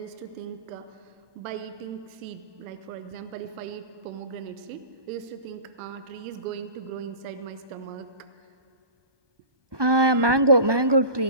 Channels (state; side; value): late; left; 1.2 ms